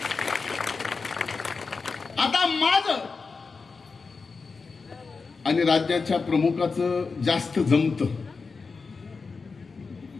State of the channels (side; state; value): right; quieter; 4.6 dB